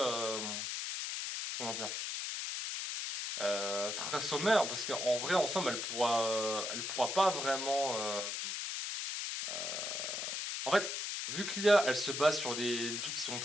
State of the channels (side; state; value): left; noise; hiss, 3 dB below the sound